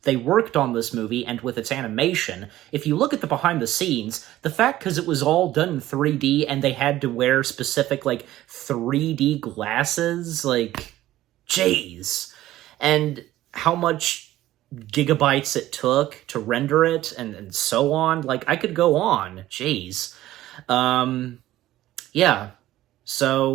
worked on this movie and with its animation. If you look at the behind the scenes, the fact, because it was all done in 3D and they had to wear specific 3D glasses, jeez. And how much gigabytes it took to render it and so on. I could go on. Jeez. Yeah.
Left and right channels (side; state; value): left; quieter; 14.9 dB